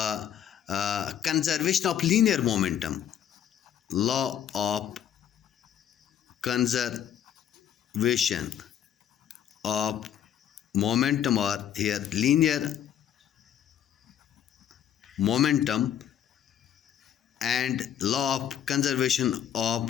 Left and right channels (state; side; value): quieter; right; 9.7 dB